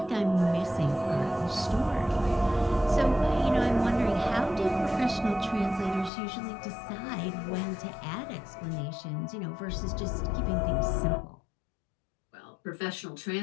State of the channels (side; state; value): right; drops out; at 6.1 s